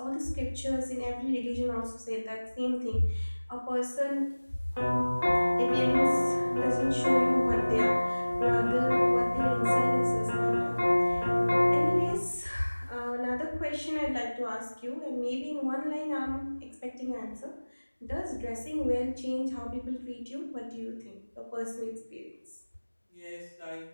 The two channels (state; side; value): inverted; both; correlation -1.00